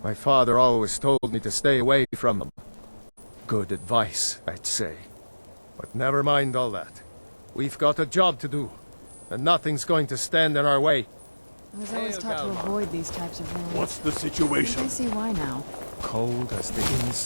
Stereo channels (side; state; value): both; inverted; correlation -1.00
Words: My father always told me to stay away from them. Good advice, I'd say. But never mind all that. We've got a job to do, and nothing's going to stand in our way. I was always taught to avoid these types of ruins. What's the I situation? see why now. Cold as the